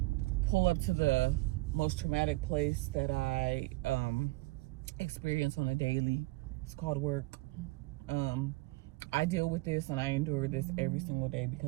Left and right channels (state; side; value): quieter; left; 22.0 dB